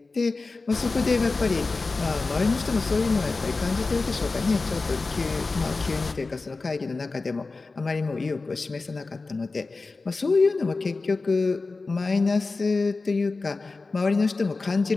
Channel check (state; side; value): quieter; right; 3.8 dB